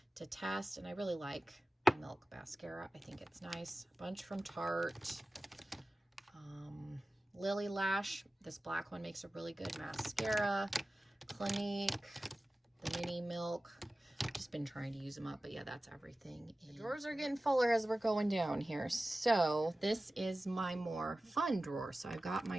to test, and I really like Milk mascara. I think it's nice. A bunch from Tarte. Lily Lash, this black one makes a really good mascara. Clinique, the Mini Milk. I've just been trying to use them up, but yeah, that's everything. The drawers are getting fuller as we're going down here. So this is my more fun drawer. So I've got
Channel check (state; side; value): normal; both; correlation 0.96